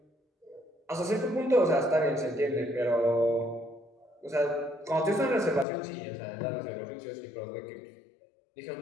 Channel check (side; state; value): right; drops out; at 5.7 s